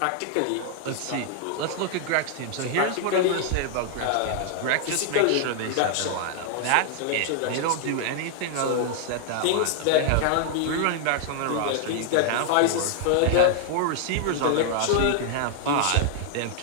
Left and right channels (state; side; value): different; both; correlation 0.00